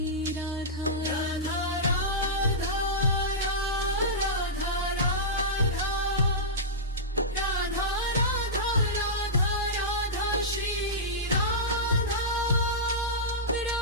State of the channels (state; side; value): normal; both; correlation -0.14